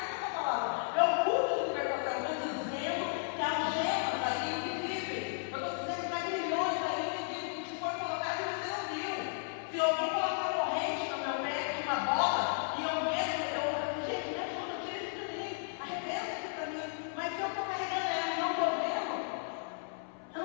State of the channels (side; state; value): right; silent; 55 dB below the other